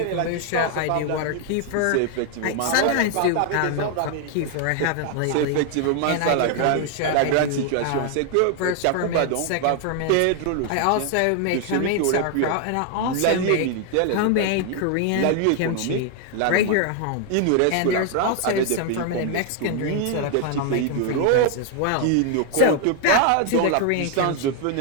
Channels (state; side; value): different; both; correlation 0.00